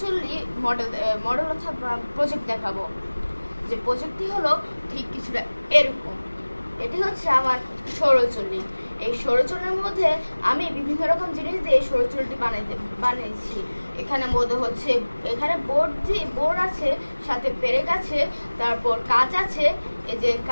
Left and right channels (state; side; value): inverted; both; correlation -1.00